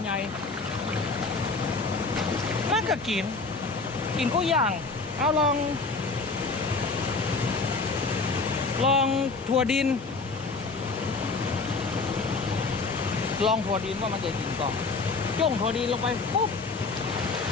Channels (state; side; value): quieter; right; 4.0 dB